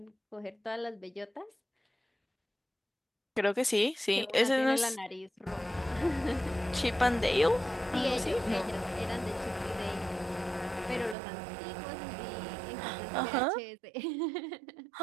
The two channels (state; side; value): drops out; left; at 11.2 s